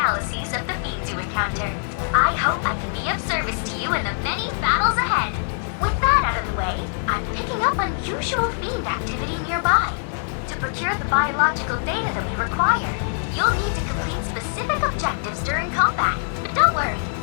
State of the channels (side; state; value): right; silent; digital silence